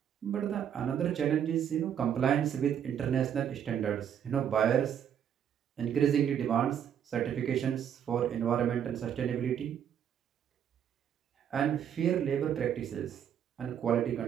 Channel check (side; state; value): left; quieter; 9.0 dB